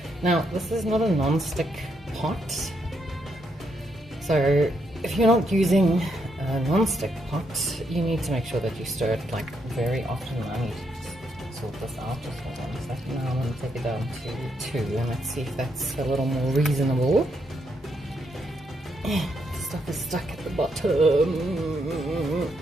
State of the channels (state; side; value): normal; both; correlation 0.78